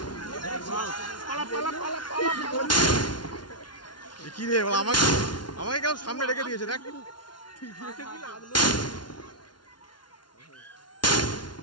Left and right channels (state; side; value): late; right; 0.70 ms